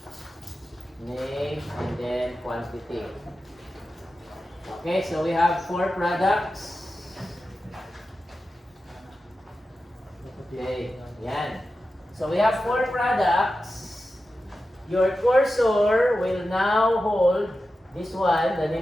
Name, and then quantity. Okay, so we have 4 products. Okay, yan. So we have 4 products. Your cursor will now hold this one. The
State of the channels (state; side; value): normal; both; correlation 0.92